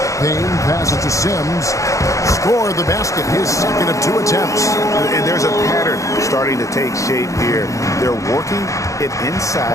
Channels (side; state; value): right; late; 0.15 ms